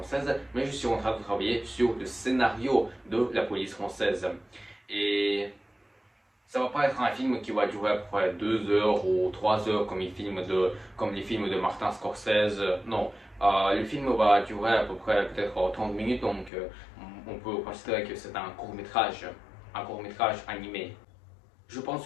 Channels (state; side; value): drops out; right; at 16.5 s